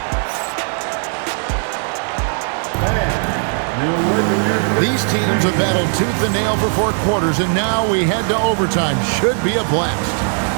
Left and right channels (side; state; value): left; silent; 56 dB below the other